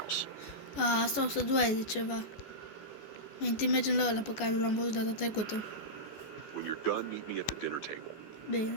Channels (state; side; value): late; right; 14 ms